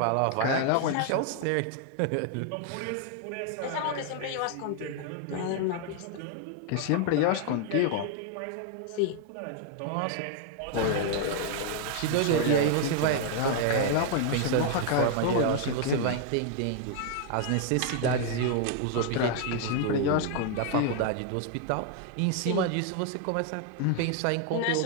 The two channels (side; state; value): both; different; correlation 0.00